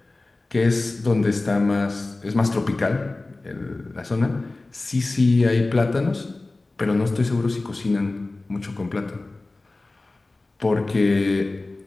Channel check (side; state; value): right; quieter; 3.1 dB